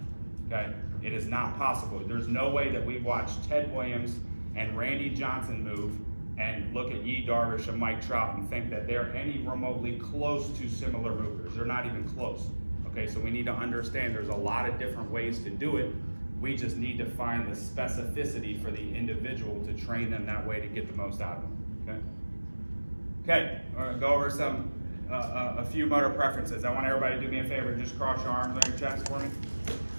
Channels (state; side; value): inverted; both; correlation -1.00